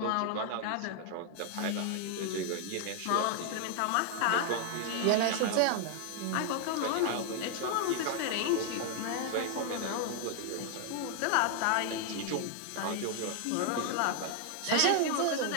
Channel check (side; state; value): both; different; correlation 0.00